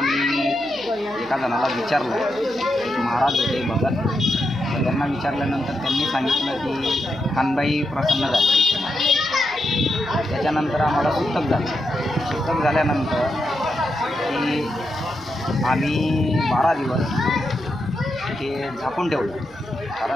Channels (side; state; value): right; noise; hum, 24 dB below the sound